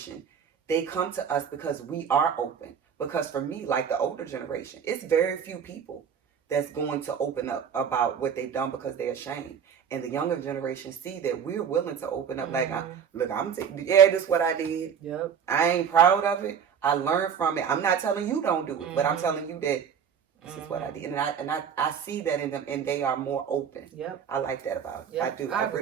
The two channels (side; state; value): left; quieter; 7.5 dB